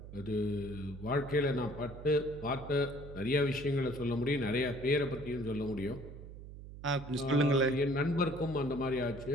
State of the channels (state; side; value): noise; right; hum, 13 dB below the sound